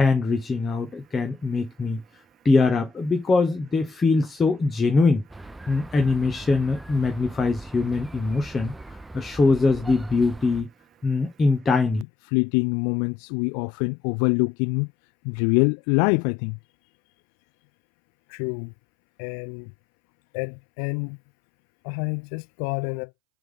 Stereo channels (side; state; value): right; drops out; at 12.1 s